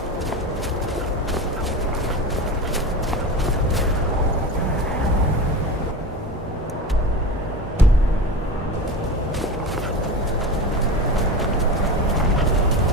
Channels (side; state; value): both; normal; correlation 0.28